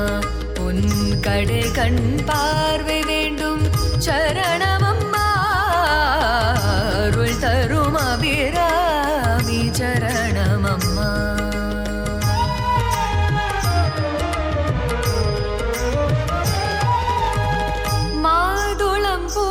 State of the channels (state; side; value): identical; both; correlation 1.00